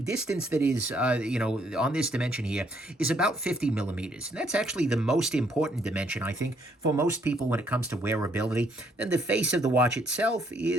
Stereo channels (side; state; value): both; normal; correlation 0.69